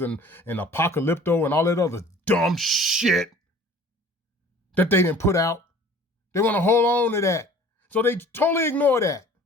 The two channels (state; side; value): normal; both; correlation 0.47